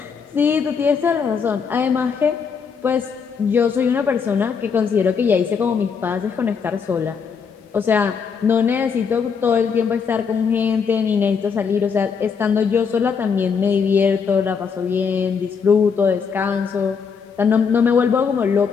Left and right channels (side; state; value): right; quieter; 6.1 dB